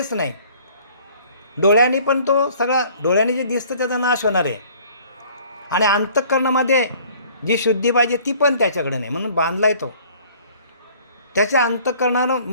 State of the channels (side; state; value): both; inverted; correlation -0.54